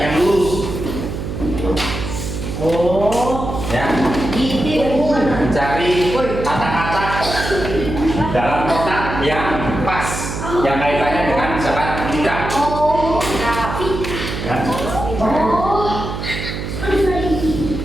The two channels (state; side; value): noise; right; hum, 6 dB below the sound